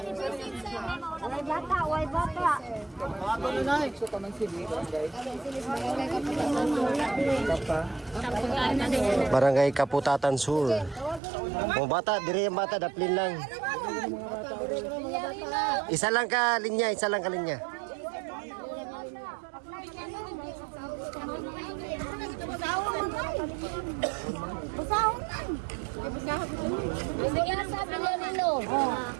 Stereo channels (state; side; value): drops out; left; at 11.2 s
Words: Barangay Kaputatan Sur. O bata, diri yung bata, daplin lang. Isa lang ka linya. Bigyan sa Villarino.